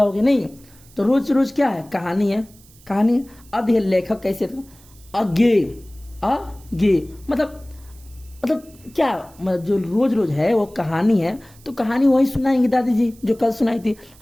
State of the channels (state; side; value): noise; right; hiss, 26 dB below the sound